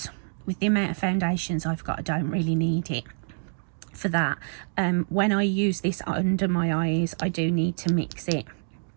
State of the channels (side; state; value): left; silent; digital silence